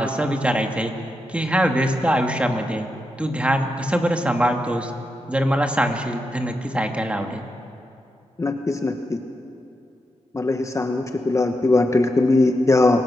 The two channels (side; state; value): both; normal; correlation 0.86